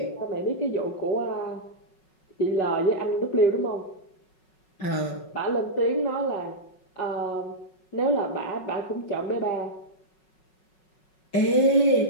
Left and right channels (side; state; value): right; late; 5.4 ms